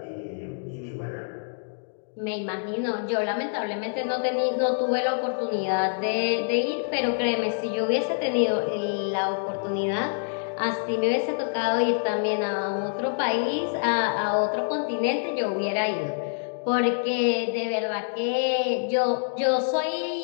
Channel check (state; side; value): silent; right; digital silence